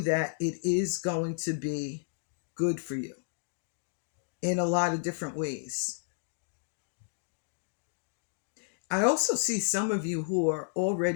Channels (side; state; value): right; silent; digital silence